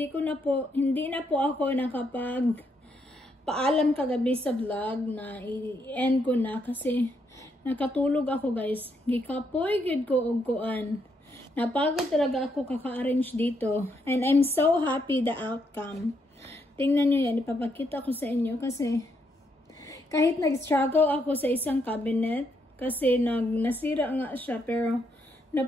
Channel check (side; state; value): both; normal; correlation 0.77